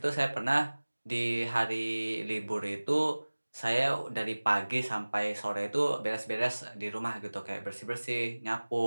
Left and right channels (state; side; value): inverted; both; correlation -1.00